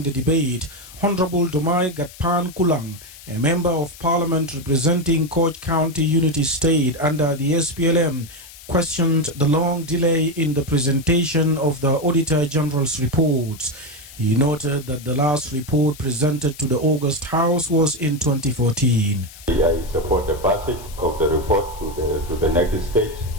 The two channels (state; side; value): noise; left; hiss, 18 dB below the sound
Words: the debate, Honorable Dumai Gatpan Kulang, a member of parliament representing Koch County Unity State under the SPLM, questioned the long delay in the presentation of the Auditor General's reports. He noted that the last report presented to the August House was in 2014. I support the passage of the report to the next stage,